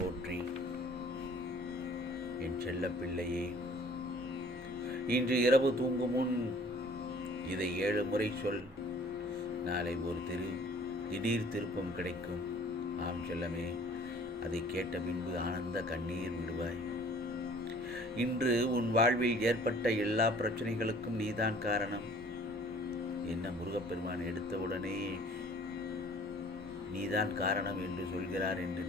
என் செல்ல பிள்ளையே, இன்று இரவு தூங்கும் முன் இதை 7 முறை சொல். நாளை ஒரு திடீர் திருப்பம் கிடைக்கும். ஆம் செல்லமே, அதை கேட்ட பின்பு ஆனந்த கண்ணீர் விடுவாய். இன்று உன் வாழ்வில் ஏற்பட்ட எல்லா பிரச்சனைகளுக்கும் நீதான் காரணம். என்ன முருகப்பெருமான் எடுத்தவுடனே நீதான் காரணம் என்று சொல்கிறார் என்று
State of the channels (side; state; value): both; normal; correlation 0.53